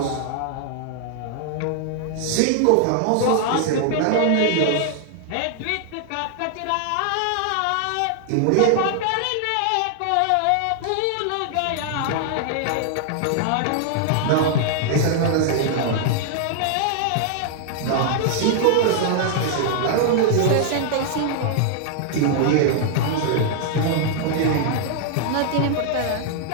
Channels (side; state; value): both; different; correlation 0.00